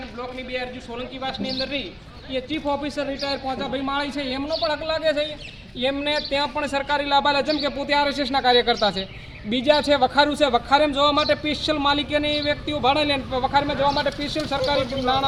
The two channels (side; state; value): both; identical; correlation 1.00